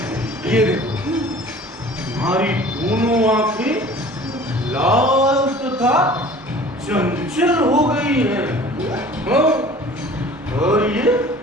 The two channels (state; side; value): normal; both; correlation 0.46